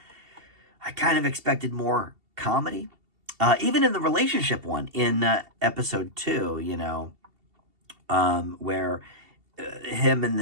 I kind of expected more comedy. Even in the relationship one in episode 2, where him and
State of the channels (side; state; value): left; late; 2.7 ms